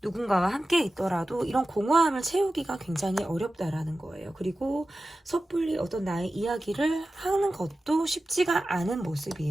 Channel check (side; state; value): both; normal; correlation 0.94